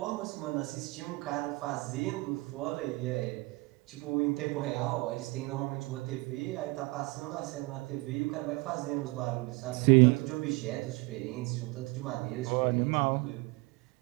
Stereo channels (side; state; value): left; quieter; 24.3 dB